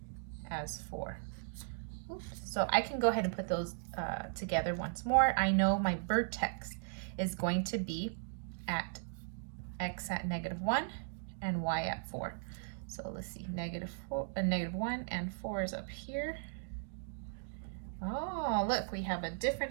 as 4. Oops. So I can go ahead and put those together once more. I know my vertex is going to be at x at -1 and y at 4. So let's see, -1 and 4 is up here. Oh, look, we have a different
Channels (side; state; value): left; silent; digital silence